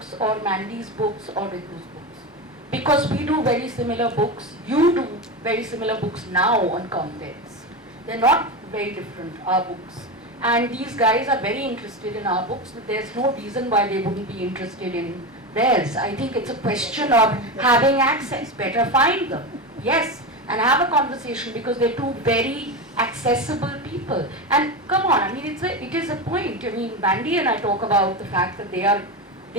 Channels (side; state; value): both; normal; correlation 0.19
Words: or Mandy's books or Ritu's books. Because we do very similar books, you do very similar books now on contents. They're not very different, our books. And these guys are very interested in our books. There's no reason why they wouldn't be interested in theirs. I think it's a question of having access. Better find them, yes, and have a conversation, because they're two very accessible people. people. And come on, I mean, it is a point. I mean, Bandy and I talk about the fact that they